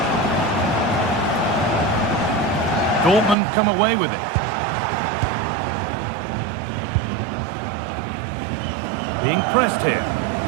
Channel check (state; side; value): drops out; left; at 3.4 s